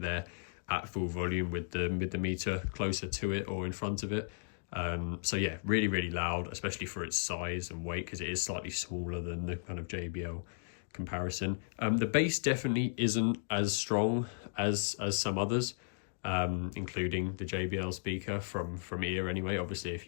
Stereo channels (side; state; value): right; silent; digital silence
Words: there at full volume with the meter closer to it or in front of it. So yeah, really, really loud, especially for its size and weight, because it is slightly smaller than the kind of JBL comparison. The bass definitely isn't as strong as some others, including the JBL speaker from ear anyway. Obviously, if